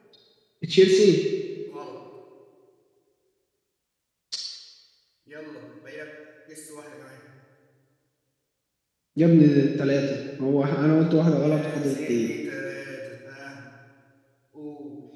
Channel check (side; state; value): both; identical; correlation 1.00